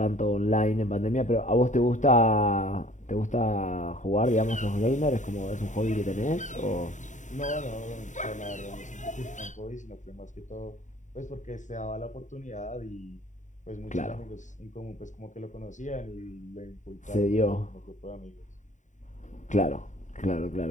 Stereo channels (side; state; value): right; late; 0.36 ms